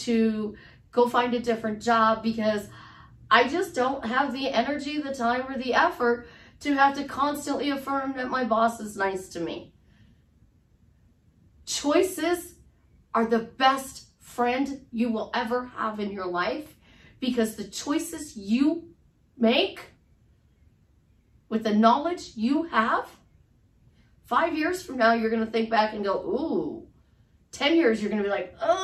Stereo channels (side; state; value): both; identical; correlation 1.00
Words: go find a different job because I just don't have the energy, the time, or the effort to have to constantly affirm that my boss is nice to me. Choices are the best friend you will ever have in your life because the choices you make with the knowledge you have, 5 years from now, you're going to think back and go, ooh. 10 years, you're going to be like,